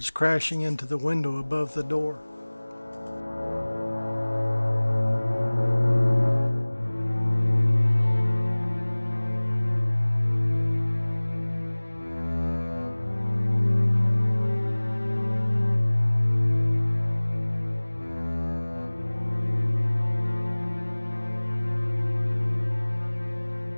crashing into the window above the door.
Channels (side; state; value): both; inverted; correlation -1.00